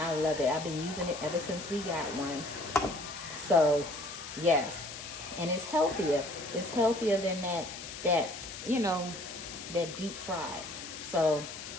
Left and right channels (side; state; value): left; noise; hiss, 10 dB below the sound